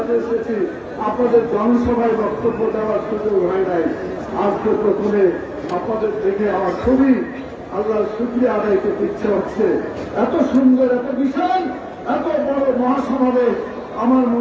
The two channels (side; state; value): both; identical; correlation 1.00